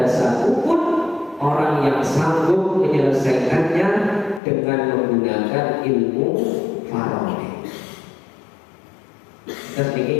satupun orang yang sanggup menyelesaikannya dengan menggunakan ilmu faraid. Terus ini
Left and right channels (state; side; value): drops out; right; at 4.4 s